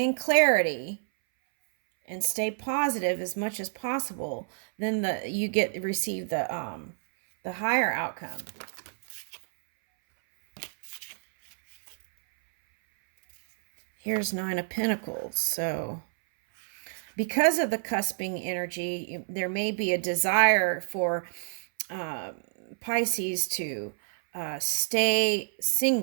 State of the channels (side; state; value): left; silent; 59 dB below the other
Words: clarity and stay positive as much as possible, then you receive the higher outcome. Here's Nine of Pentacles. So because of the cusping energy, there may be a desire for Pisces to stay